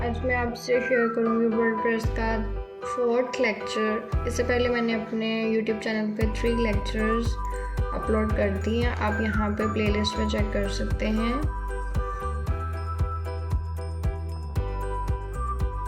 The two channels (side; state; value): both; identical; correlation 1.00